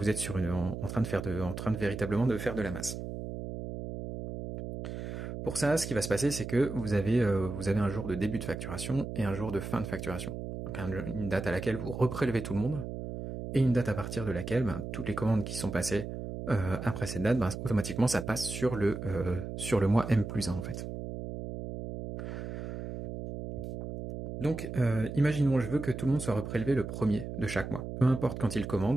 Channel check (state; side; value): noise; right; hum, 7 dB below the sound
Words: train de véritablement de faire de la masse. Pour ça, ce qui va se passer, c'est que vous avez un jour de début de facturation et un jour de fin de facturation. Donc une date à laquelle vous reprélevez tout le monde et une date à partir de laquelle toutes les commandes qui sont passées après cette date, automatiquement ça passe sur le mois M+1 en fait. Donc imaginons, je veux que tout le monde soit reprélevé le premier de chaque mois. Peu importe quand il